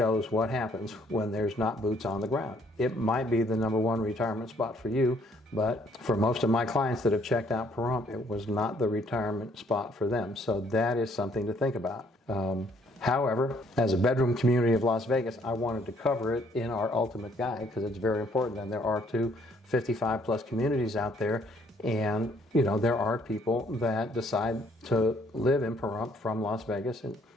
what happens when there's not boots on the ground. It might be the #1 retirement spot for you, but for most of my clients that have checked out Pahrump, it was not the retirement spot for them. So that is something to think about. However, as a bedroom community of Las Vegas, I wanted to cover it in our ultimate guide because it's very important. And there are 55 plus communities out there. And, there are people that decide to live in Pahrump from Las Vegas, and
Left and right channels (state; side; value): normal; both; correlation 0.65